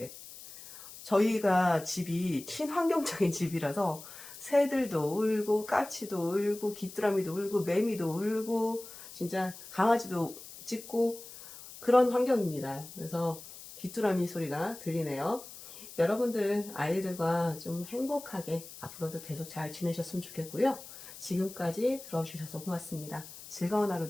저희가 집이 친환경적인 집이라서 새들도 울고 까치도 울고 귀뚜라미도 울고 매미도 울고 진짜 강아지도 짖고 그런 환경입니다. 그래서 귀뚜라미 소리가 들리네요. 여러분들 아이들과 좀 행복하게 앞으로도 계속 잘 지내셨으면 좋겠고요. 지금까지 들어주셔서 고맙습니다. 즐거운 하루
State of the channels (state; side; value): noise; left; hiss, 15 dB below the sound